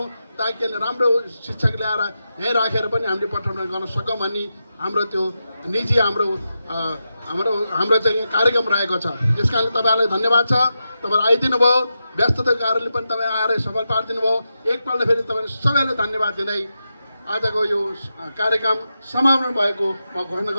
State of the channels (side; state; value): both; inverted; correlation -0.89